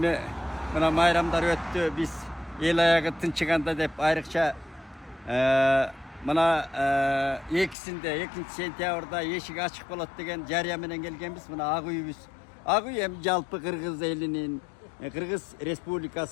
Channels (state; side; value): drops out; right; at 7.8 s